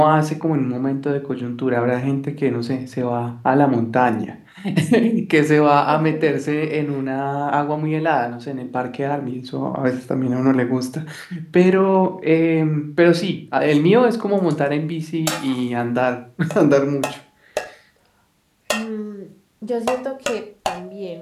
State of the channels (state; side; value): identical; both; correlation 1.00